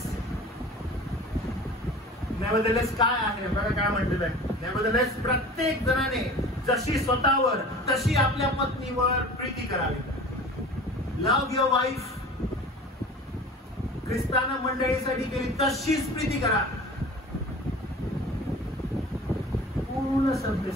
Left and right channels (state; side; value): normal; both; correlation 0.40